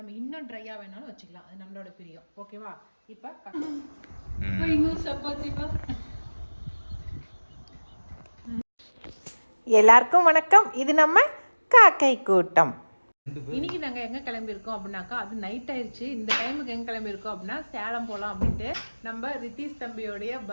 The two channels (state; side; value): inverted; both; correlation -1.00